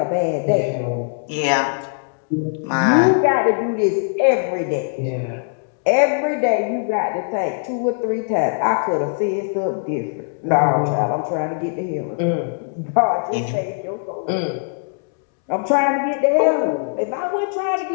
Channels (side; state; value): right; silent; 65 dB below the other